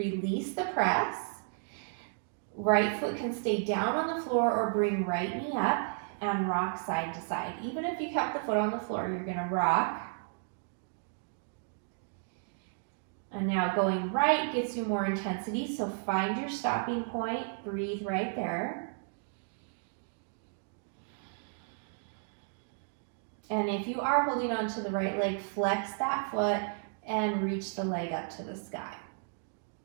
the press. Right foot can stay down on the floor or bring right knee up and rock side to side. Even if you kept the foot on the floor, you're going to rock. And now going right gets you more intensity, so find your stopping point, breathe right there. And if you are holding on to the right leg, flex that foot and reach the leg up to the sky.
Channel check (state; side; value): silent; left; digital silence